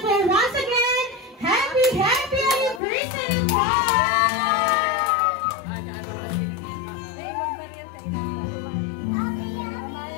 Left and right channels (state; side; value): drops out; right; at 2.8 s